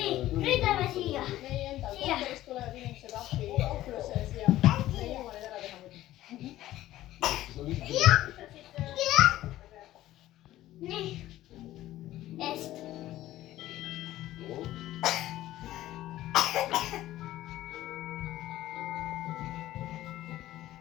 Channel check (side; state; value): right; quieter; 14.8 dB